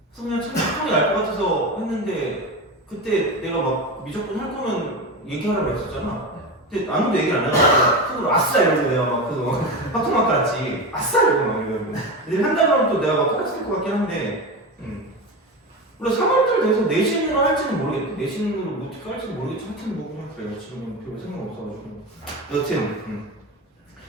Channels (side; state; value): both; normal; correlation 0.22